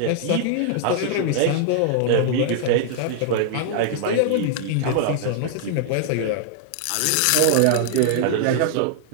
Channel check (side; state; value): both; different; correlation -0.01